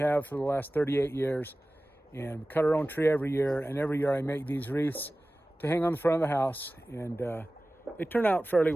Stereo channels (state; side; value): normal; both; correlation 0.97